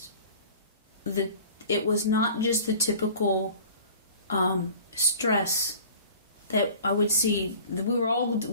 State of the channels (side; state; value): both; inverted; correlation -0.44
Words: the typical stress that I would see. We were all